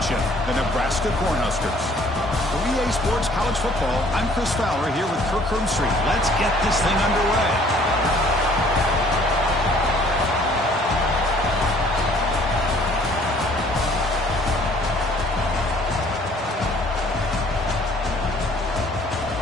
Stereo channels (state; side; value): normal; both; correlation 0.57